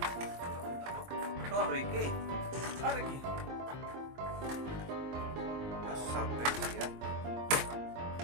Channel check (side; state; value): left; late; 23 ms